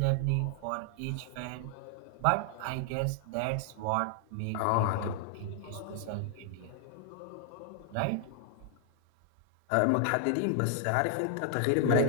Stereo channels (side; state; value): both; different; correlation 0.00